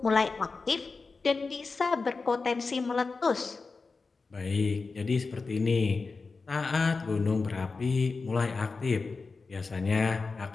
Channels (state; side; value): quieter; right; 4.2 dB